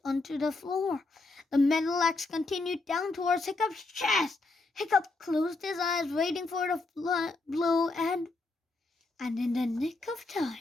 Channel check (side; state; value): right; quieter; 3.3 dB